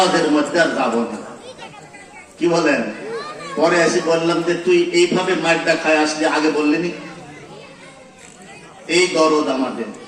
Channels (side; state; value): both; identical; correlation 1.00